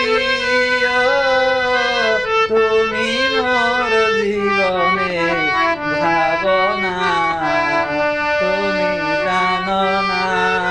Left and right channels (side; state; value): left; noise; rumble, 20 dB below the sound